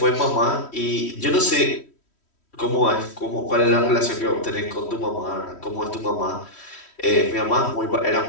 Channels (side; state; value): right; late; 3.1 ms